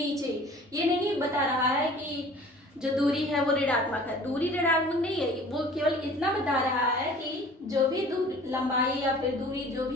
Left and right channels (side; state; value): both; normal; correlation 0.47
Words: ये नहीं बता रहा है कि जो दूरी है वो ऋणात्मक है। दूरी ऋणात्मक नहीं है, वो केवल इतना बता रहा है कि जो भी दूरी, लंबाई या फिर दूरी जो